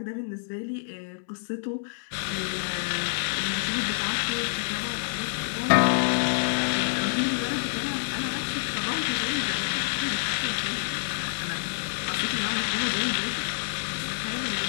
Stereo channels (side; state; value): right; silent; 60 dB below the other